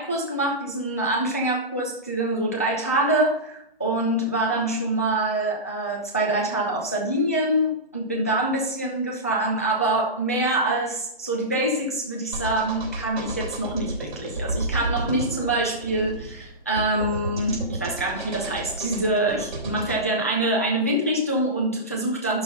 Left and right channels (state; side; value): normal; both; correlation -0.15